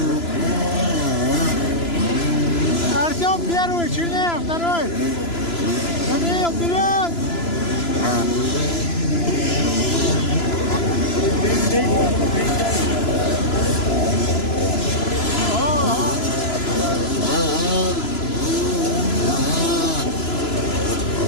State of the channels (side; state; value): right; late; 3.0 ms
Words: Артем первый, Чернеев второй. Даниил, вперед!